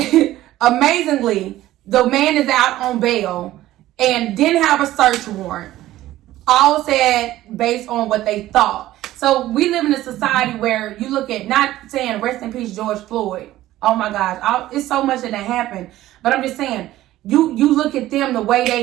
Amazingly, the man is out on bail and didn't have a search warrant. All said based on what they thought. So we live in a society where you look at, not saying rest in peace George Floyd. Oh my gosh, it's so much that happened. But I'm just saying, you look at them the way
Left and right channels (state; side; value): quieter; left; 15.0 dB